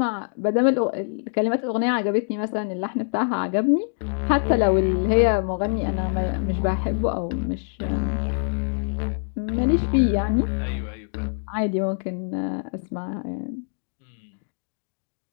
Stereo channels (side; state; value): right; silent; digital silence